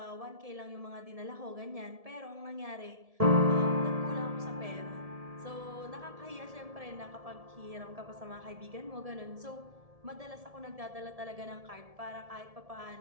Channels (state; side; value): late; left; 1.7 ms